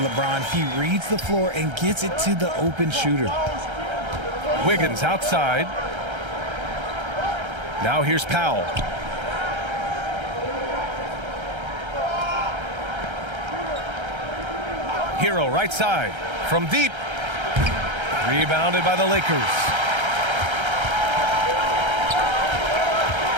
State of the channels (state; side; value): late; left; 1.3 ms